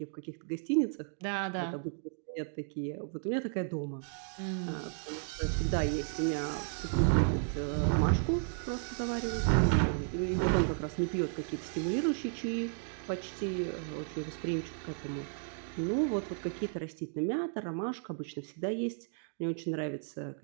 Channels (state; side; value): silent; left; 55 dB below the other